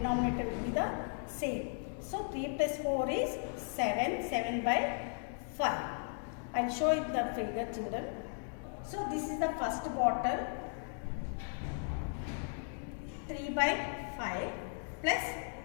will be the same. So 3 plus 4 is 7. 7/5. I'll show you the figure children. So this is the first bottle, 3/5 plus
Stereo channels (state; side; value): silent; right; 54 dB below the other